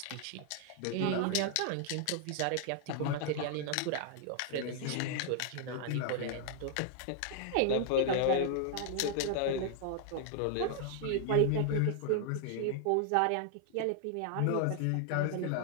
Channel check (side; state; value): both; different; correlation 0.00